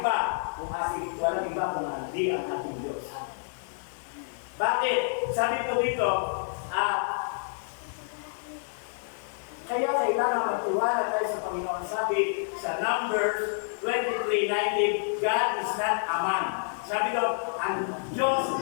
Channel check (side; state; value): right; silent; digital silence